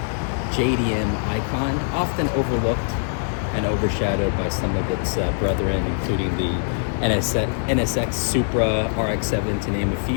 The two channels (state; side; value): silent; right; digital silence